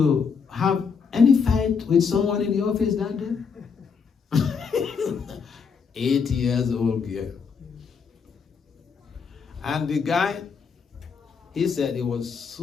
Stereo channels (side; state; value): right; quieter; 5.9 dB